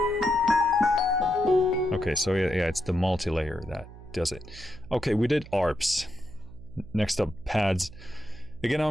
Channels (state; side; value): noise; right; hum, 17 dB below the sound